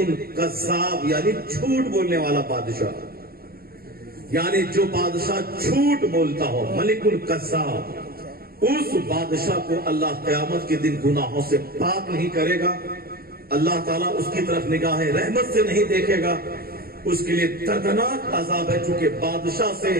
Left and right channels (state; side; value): late; left; 0.44 ms